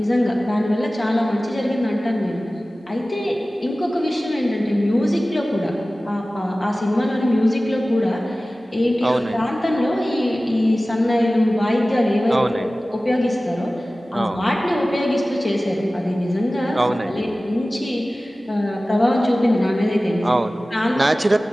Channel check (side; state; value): both; normal; correlation 0.97